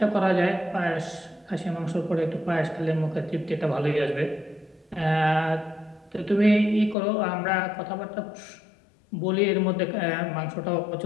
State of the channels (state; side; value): drops out; right; at 7.0 s